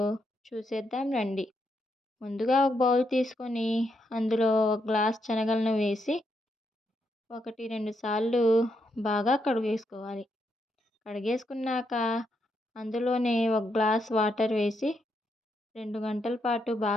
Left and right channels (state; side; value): normal; both; correlation 0.79